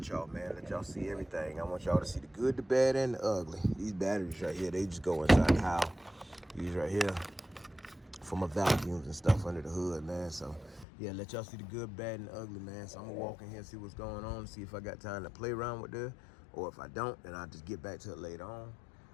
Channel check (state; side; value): drops out; right; at 10.9 s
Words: y'all, man. Let y'all see everything. I want y'all to see the good, the bad, and the ugly. These batteries right here, they just go inside the house. These right here for my vacuums and stuff under the hood, man. So yeah, let y'all see the good, bad, and the ugly, man. So I'm gonna walk in here and see what's going on, see if I got time to play around with this, or if I don't, then I'll just get back to it later on.